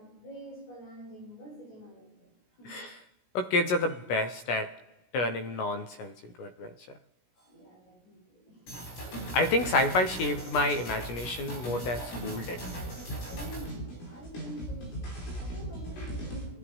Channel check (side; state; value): right; late; 17 ms